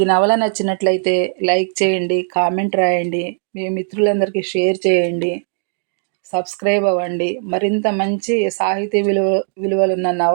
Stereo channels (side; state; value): left; silent; digital silence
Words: నవల నచ్చినట్లయితే లైక్ చేయండి, కామెంట్ రాయండి, మీ మిత్రులందరికీ షేర్ చేయండి, సబ్స్క్రైబ్ అవ్వండి. మరింత మంచి సాహితీ విలువలున్న